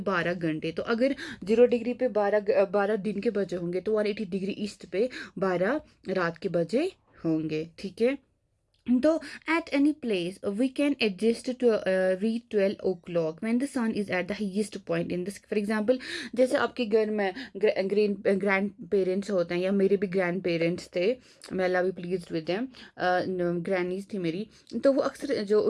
घंटे। तो अगर 0 डिग्री पे 12 दिन के बजे होंगे तो 180 डिग्री ईस्ट पे 12 रात के बजे होंगे, ठीक है। तो at any place we can adjust to read 12 o'clock when the sun is at the highest point in this, for example जैसे आपके घर में ग्रैंड पेरेंट्स होते हैं, या मेरे भी ग्रैंड पेरेंट्स थे, मैं अल्लाह भी प्लीज विद देम, ग्रैनीज थी मेरी। तो वो अक्सर जो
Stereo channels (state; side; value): identical; both; correlation 1.00